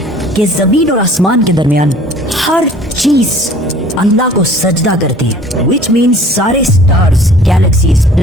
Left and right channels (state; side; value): normal; both; correlation 0.51